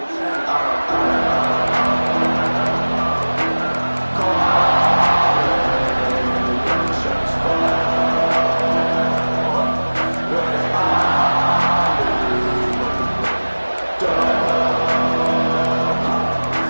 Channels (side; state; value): both; inverted; correlation -1.00